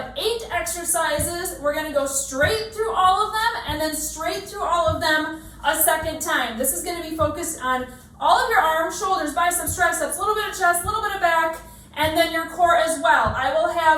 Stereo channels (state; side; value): identical; both; correlation 1.00